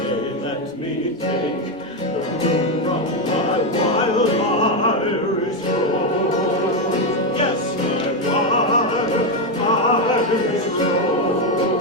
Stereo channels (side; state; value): both; normal; correlation 0.07